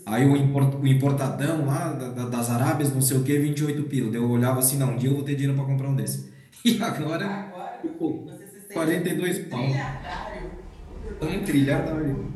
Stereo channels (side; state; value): both; identical; correlation 1.00